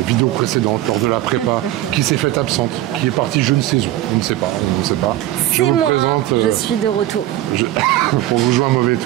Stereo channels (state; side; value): quieter; left; 14.7 dB